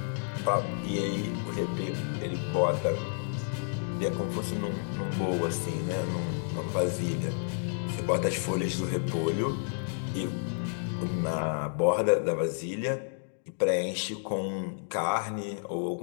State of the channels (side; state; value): right; silent; digital silence